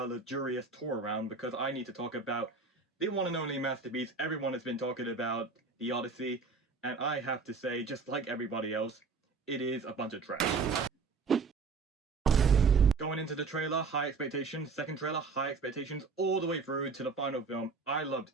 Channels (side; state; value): left; quieter; 4.6 dB